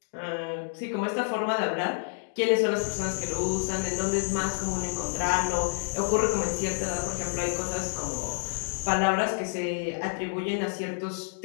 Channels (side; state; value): right; silent; digital silence